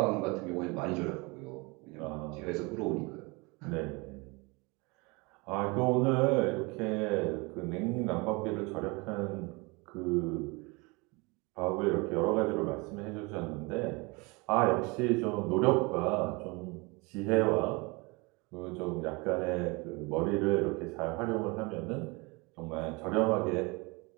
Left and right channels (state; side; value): quieter; left; 27.0 dB